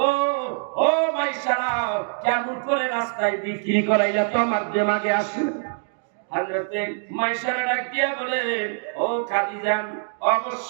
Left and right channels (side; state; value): left; silent; digital silence